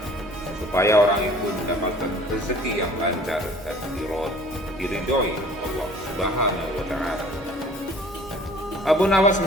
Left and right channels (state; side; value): normal; both; correlation 0.50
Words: supaya orang itu mendapatkan rezeki yang lancar dan diridhoi Allah Subhanahu wa Ta'ala. Abu Nawas